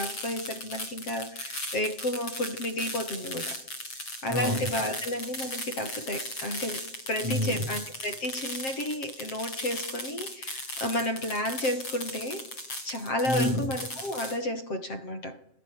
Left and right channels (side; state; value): right; late; 7.6 ms